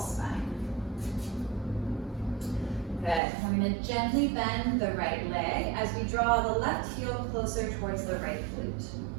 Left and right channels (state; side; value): drops out; left; at 3.2 s